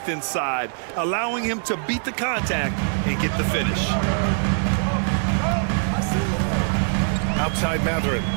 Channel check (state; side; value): silent; left; 64 dB below the other